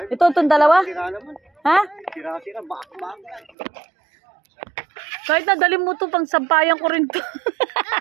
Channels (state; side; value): drops out; left; at 3.5 s